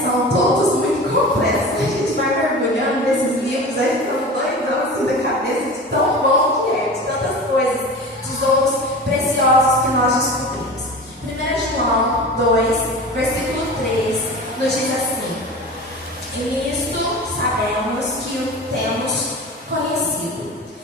são todos muito complexos. A gente vai mergulhando nesses livros, aí ficamos doidão assim da cabeça de tão bom que é, de tantas coisas, tesouros preciosos que nós descobrimos. 1 João 2, versículo 3, nos diz assim: e nisto sabemos que o temos conhecido,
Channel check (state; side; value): normal; both; correlation 0.33